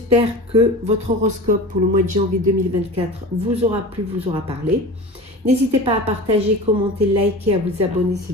que votre horoscope pour le mois de janvier 2024 vous aura plu, vous aura parlé. N'hésitez pas à partager, commenter, liker, à vous abonner si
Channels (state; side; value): normal; both; correlation 0.34